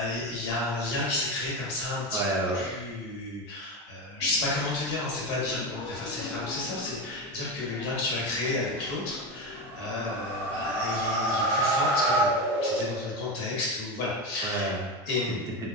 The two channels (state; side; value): normal; both; correlation 0.18